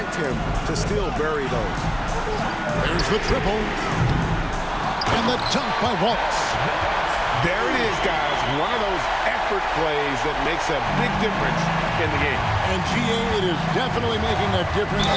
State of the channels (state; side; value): identical; both; correlation 1.00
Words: him to still bury those. There's the triple. And the dunk by Wallace. There it is, guys. One of those effort plays that makes a big difference in the game. And GA, it is definitely making a difference